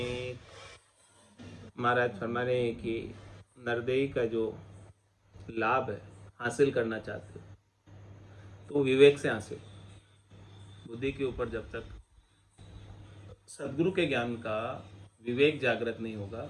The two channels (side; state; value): both; identical; correlation 1.00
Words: महाराज फरमा रहे हैं कि नरदेही का जो लाभ है हासिल करना चाहते हो तो विवेक से हासिल। बुद्धि के ऊपर जब तक सदगुरु के ज्ञान का विवेक जागृत नहीं होगा